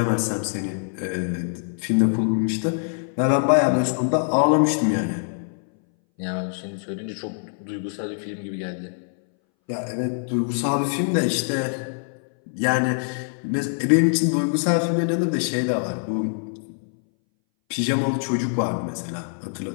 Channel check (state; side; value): silent; right; 61 dB below the other